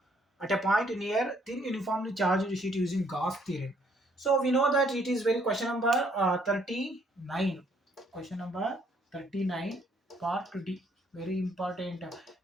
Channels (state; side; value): normal; both; correlation 0.67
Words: at a point near thin uniformly charged sheet using Gauss theorem. So we know that it is very question number 39. Question number 39, part 2D. Very important.